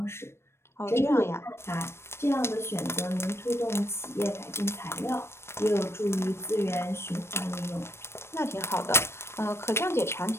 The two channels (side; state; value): right; late; 0.12 ms